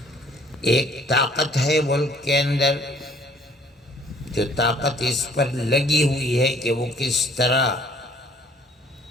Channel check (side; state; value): both; normal; correlation 0.58